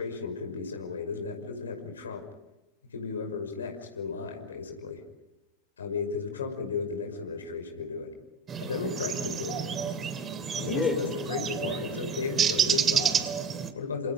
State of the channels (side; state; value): both; normal; correlation 0.24